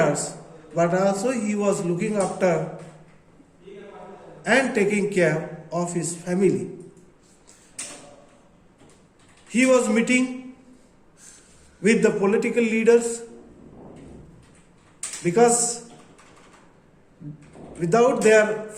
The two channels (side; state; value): both; identical; correlation 1.00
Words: but also he was looking after and taking care of his family. He was meeting with the political leaders because without their